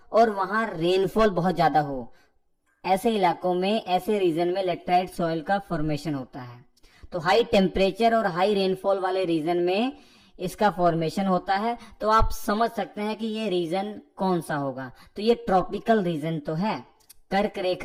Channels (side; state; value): both; identical; correlation 1.00